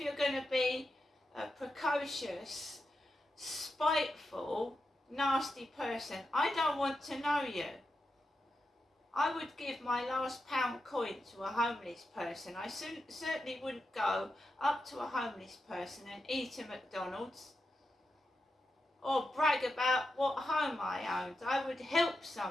going to be a precocious, spiteful, nasty person, I don't want to know you. I would give my last pound coin to a homeless person. I certainly wouldn't go up to a homeless person and eat a McDonald's or brag about what home I owned. I would help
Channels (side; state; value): both; normal; correlation 0.88